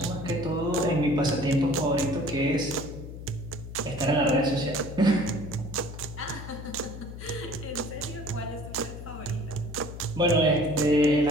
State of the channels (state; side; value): noise; left; hum, 11 dB below the sound